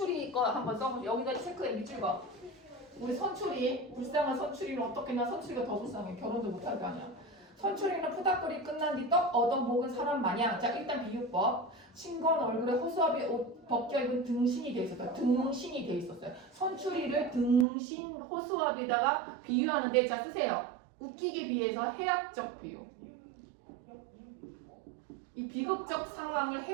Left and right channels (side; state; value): left; drops out; at 17.7 s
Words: 거 한번 써보세요. 여기다 체크해 밑줄 거. 우리 선출이, 불쌍한 선출이는 어떻게나 선출이가 더 불쌍해. 결혼도 못할 거 아니야. 선출이는 푸닥거리 끝난 뒤 떡 얻어먹은 사람 마냥. 자, 일단 비유법. 싱거운 얼굴에 허수아비 옷 벗겨입은 등신이 돼 있었어요. 등신이 돼 있었어요. 선출이를 등신 허수아비에다가 비유하는데, 자, 쓰세요. 웃기기 비해서 해학적 비유. 이 비극적 상황을